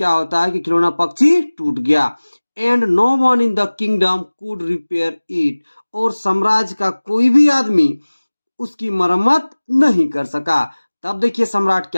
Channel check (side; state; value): both; inverted; correlation -1.00